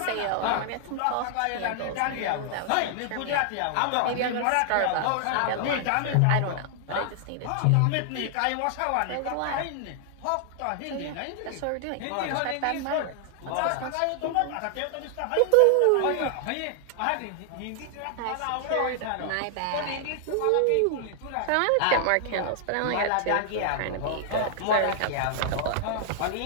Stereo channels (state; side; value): different; both; correlation 0.00